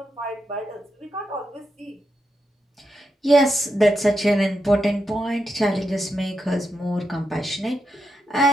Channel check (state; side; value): normal; both; correlation 0.85